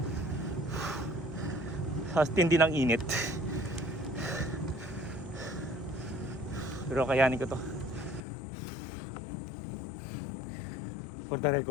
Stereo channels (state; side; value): drops out; right; at 8.2 s